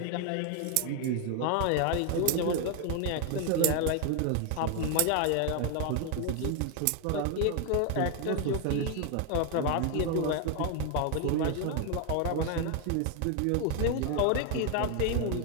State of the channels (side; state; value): both; different; correlation 0.01